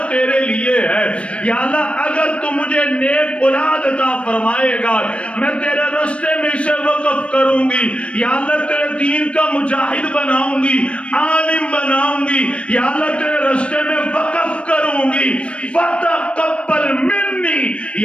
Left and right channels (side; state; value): right; late; 0.060 ms